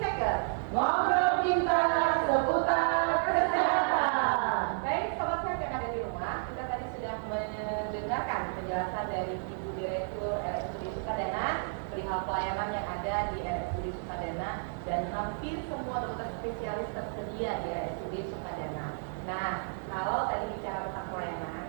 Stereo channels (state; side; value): silent; left; digital silence